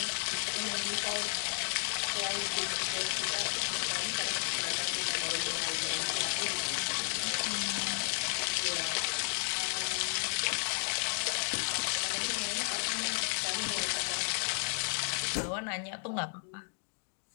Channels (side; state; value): right; silent; 56 dB below the other